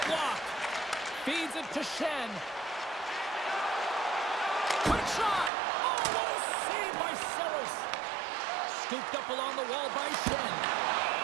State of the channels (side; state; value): left; drops out; at 5.5 s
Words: blocked. Feeds it to Shen. Quick shot. Oh, what a save by Saros. Scooped up along the wall by Shen.